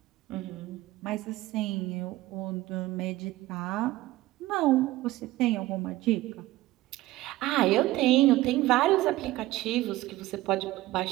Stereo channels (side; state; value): left; quieter; 17.2 dB